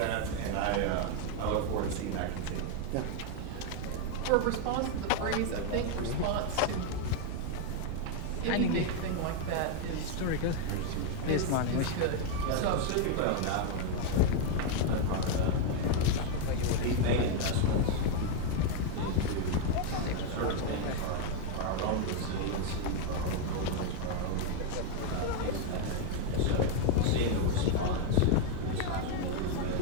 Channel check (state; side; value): different; both; correlation 0.01